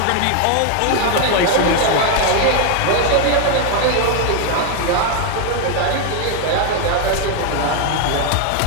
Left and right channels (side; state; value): both; different; correlation 0.01